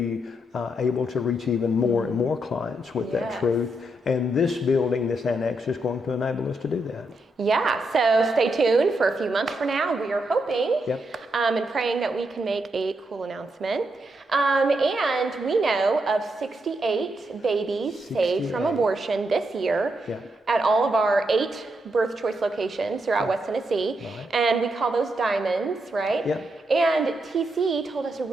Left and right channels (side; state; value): both; normal; correlation 0.81